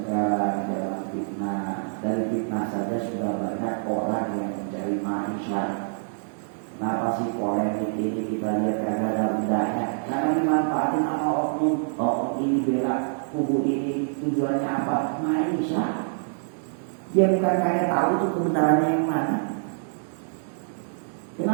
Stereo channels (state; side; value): silent; left; digital silence